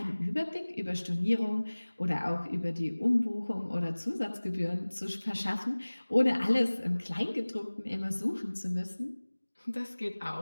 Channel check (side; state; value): both; inverted; correlation -1.00